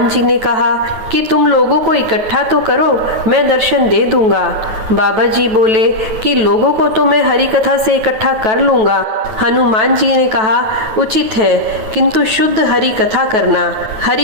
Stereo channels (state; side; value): late; left; 9.2 ms